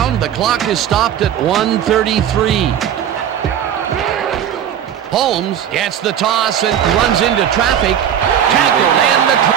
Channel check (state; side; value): quieter; left; 9.6 dB